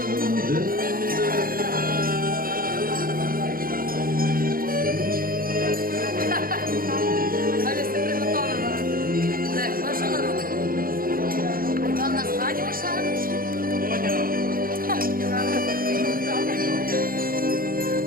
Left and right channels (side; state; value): left; late; 0.42 ms